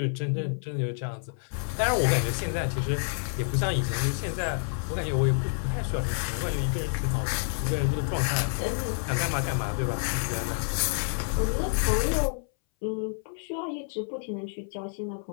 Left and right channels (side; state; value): right; silent; 59 dB below the other